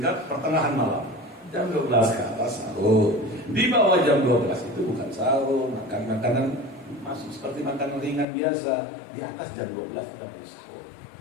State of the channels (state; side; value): drops out; right; at 8.2 s